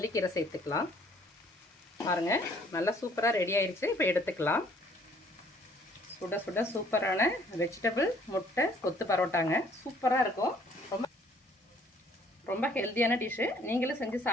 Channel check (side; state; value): both; normal; correlation 0.60